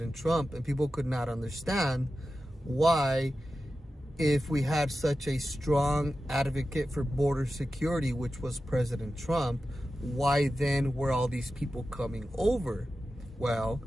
Trump, and people could not understand why, if we had such a strong advocate for border security, which was President Trump, why then were all these people coming over? Well,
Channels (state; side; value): normal; both; correlation 0.93